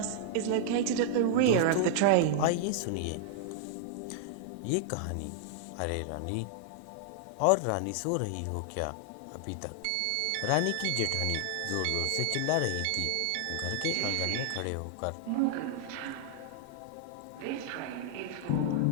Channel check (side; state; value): both; different; correlation -0.01